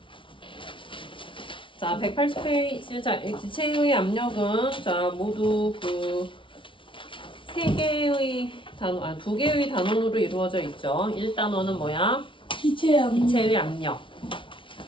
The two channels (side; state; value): right; late; 0.25 ms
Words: 자, 180페이지. 자, 이 기체의 압력은 자, 모두 그 세 개의 단원, 두 개의 단원으로 이루어져 있죠. 1단원은 뭐야? 기체의 압력.